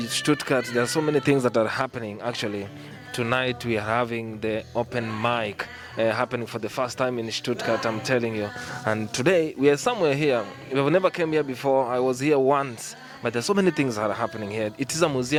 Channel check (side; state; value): both; identical; correlation 1.00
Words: Stuttgart there are so many things that are happening. Actually, tonight we are having the open mic happening for the first time in Stuttgart, I'm telling you. And today we are somewhere here. We've never came here before. I was here once. But there's so many things that are happening here. It is a